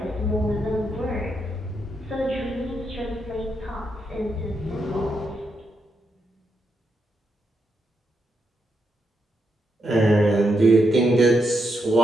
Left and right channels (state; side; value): normal; both; correlation 0.82